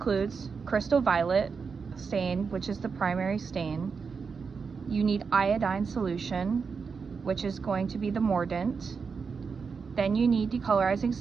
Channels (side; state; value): left; quieter; 5.4 dB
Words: crystal violet stain, which is the primary stain. You need iodine solution, which is going to be the mordant. Then you need decolorizing